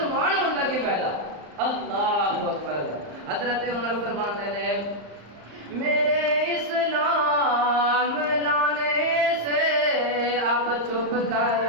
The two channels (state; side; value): late; left; 34 ms